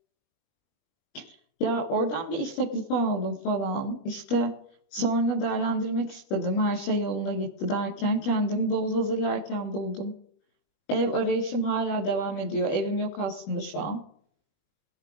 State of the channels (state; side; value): late; right; 21 ms